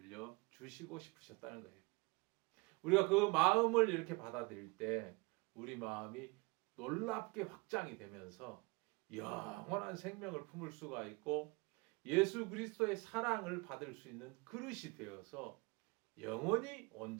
싶으셨다는 거예요. 우리가 그 마음을 이렇게 받아들일 때 우리 마음이 놀랍게 확장이 되면서 영원한 생명을 품을 수가 있고 예수 그리스도의 사랑을 받을 수 있는 그릇이 되어서 영원히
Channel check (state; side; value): quieter; left; 27.2 dB